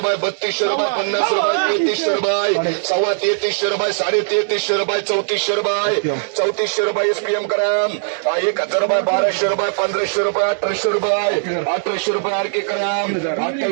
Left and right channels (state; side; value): silent; left; 67 dB below the other